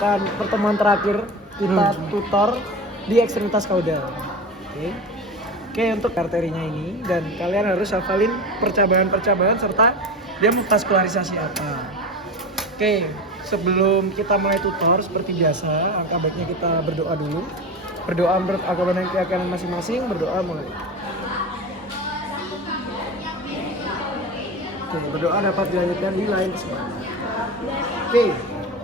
pertemuan terakhir kita tutor di ekstremitas kaudal. Oke, untuk arterinya ini dan kalian harus hafalin percabangan-percabangan serta dia muskularisasi apa. Oke, sebelum kita mulai tutor seperti biasa, angka baiknya kita berdoa dulu. Berdoa menurut agama dan keyakinan masing-masing, berdoa mulai. Oke, berdoa dapat dilanjutkan di lain kesempatan. Oke,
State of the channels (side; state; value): both; normal; correlation 0.27